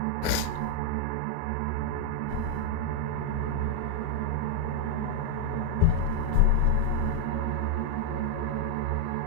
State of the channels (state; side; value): different; both; correlation 0.01